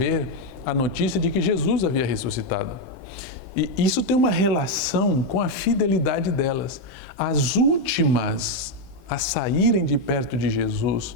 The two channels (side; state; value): right; late; 16 ms